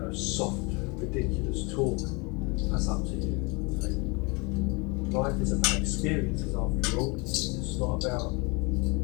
soft, ridiculous talk, that's up to you. Okay? Life is about experiences, after all. It's not about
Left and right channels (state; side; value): quieter; right; 28.8 dB